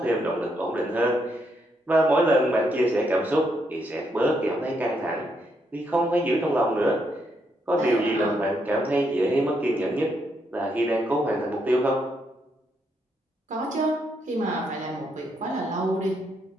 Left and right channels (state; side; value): normal; both; correlation 0.77